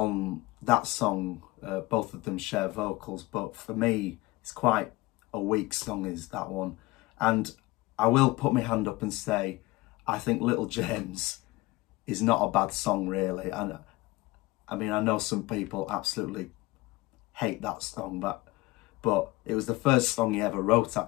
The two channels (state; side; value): quieter; right; 20.5 dB